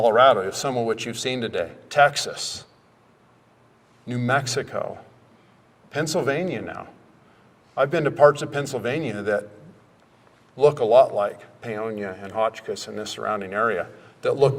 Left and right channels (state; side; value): identical; both; correlation 1.00